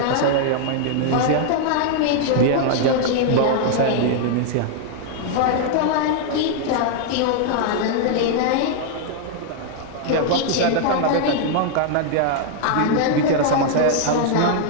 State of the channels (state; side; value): different; both; correlation 0.00